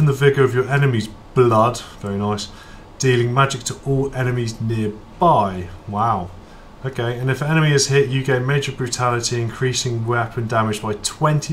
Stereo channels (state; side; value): identical; both; correlation 1.00